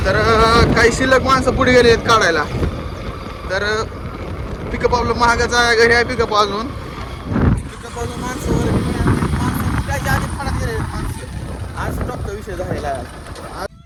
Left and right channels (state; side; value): identical; both; correlation 1.00